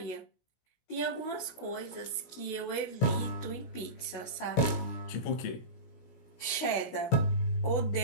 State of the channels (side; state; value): right; late; 16 ms